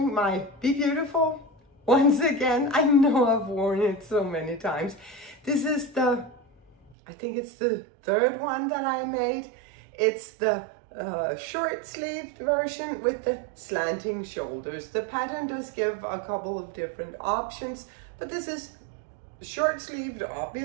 my Be Beautiful. Once again, I know I've worn it so many times. This is I think it's the third one that I made. It's the short-sleeved version with the slanting shoulders. The pattern does give a couple of different options, but this is short-sleeved,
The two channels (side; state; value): left; drops out; at 7.0 s